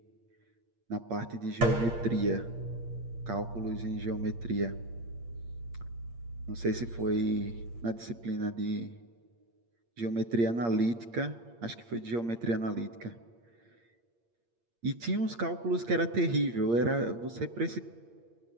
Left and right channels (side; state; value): left; late; 8.6 ms